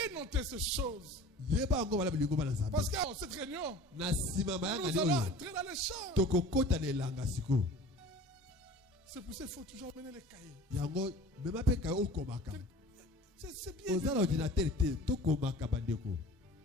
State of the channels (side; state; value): both; normal; correlation 0.42